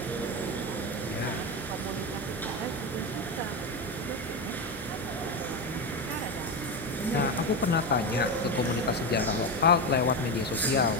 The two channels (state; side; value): normal; both; correlation 0.15